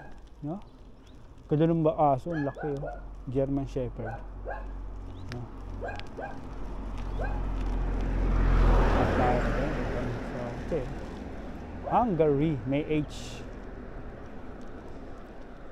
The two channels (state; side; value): identical; both; correlation 1.00